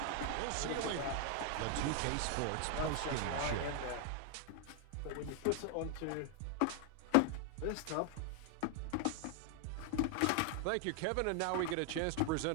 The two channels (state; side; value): different; both; correlation 0.00